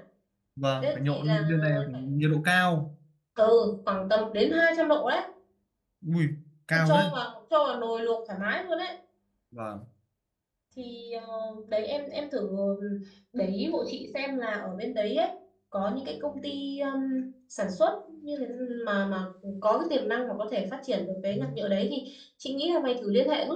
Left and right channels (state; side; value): identical; both; correlation 1.00